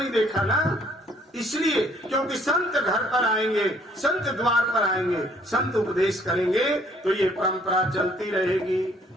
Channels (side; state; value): both; normal; correlation 0.63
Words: देखा ना। इसलिए क्योंकि संत घर पर आएंगे, संत द्वार पर आएंगे, संत उपदेश करेंगे तो ये परंपरा चलती रहेगी।